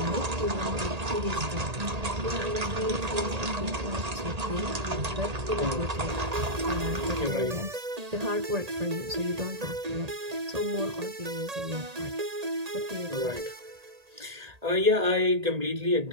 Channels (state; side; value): late; left; 1.8 ms